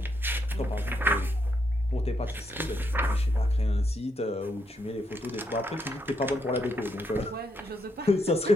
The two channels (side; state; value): both; normal; correlation 0.78